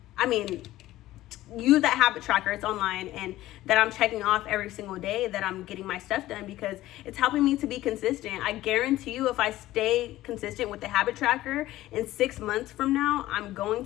use that habit tracker, it's online, and that I'm checking off every single day that I'm getting my stuff done, because it's helping me to be consistent. I guarantee you, if I stay consistent with the habit tracker, in 6 months from now, I'm going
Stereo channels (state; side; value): quieter; right; 15.6 dB